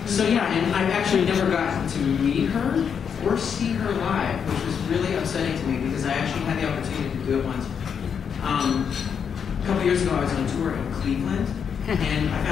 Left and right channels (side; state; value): right; quieter; 7.2 dB